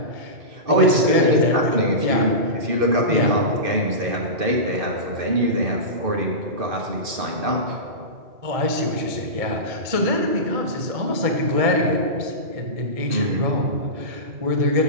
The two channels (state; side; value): late; left; 2.5 ms